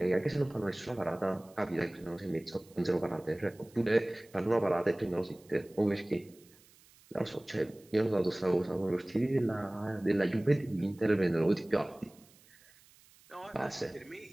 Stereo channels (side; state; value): right; noise; hiss, 27 dB below the sound